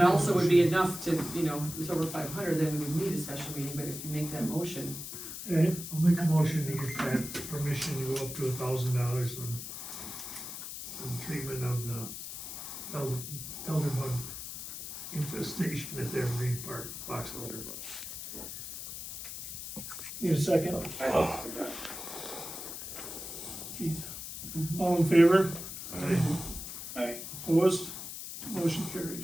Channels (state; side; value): noise; left; hiss, 8 dB below the sound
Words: also would be enough to, you know, if it's over 500, then we would need a special meeting, but if you make that motion, okay, I'll make a motion to get that permission to go up to $1,000 on treatment of the elder bug infestation at the Evergreen Park, box elder bug. need a second? Keith. All in favor? Aye. Opposed? Motion carried.